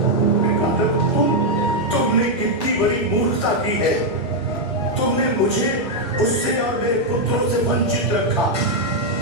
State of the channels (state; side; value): normal; both; correlation -0.01